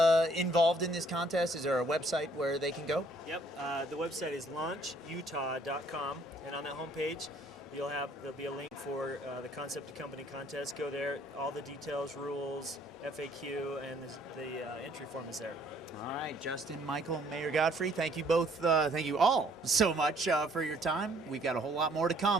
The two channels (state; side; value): normal; both; correlation 0.62